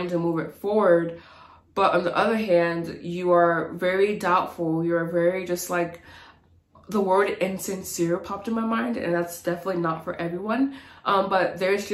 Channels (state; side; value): identical; both; correlation 1.00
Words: to move it forward, but on the other hand, you are very doubtful. You're very just like, the word insincere popped in my mind, and that's definitely not for everyone. But there's